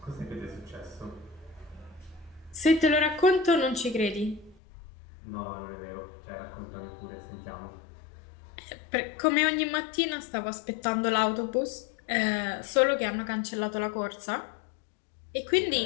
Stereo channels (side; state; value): right; drops out; at 4.5 s